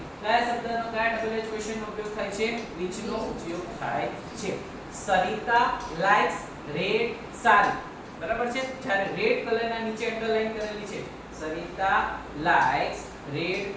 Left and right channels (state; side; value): identical; both; correlation 1.00